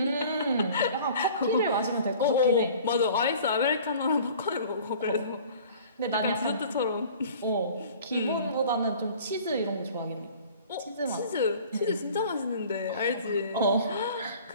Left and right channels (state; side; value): inverted; both; correlation -0.47